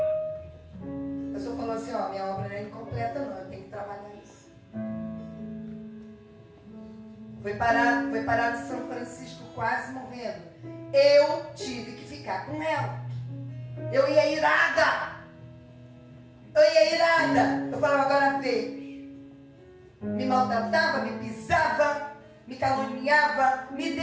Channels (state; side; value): identical; both; correlation 1.00